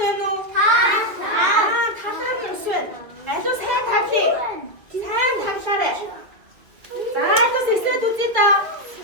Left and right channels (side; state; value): left; late; 2.4 ms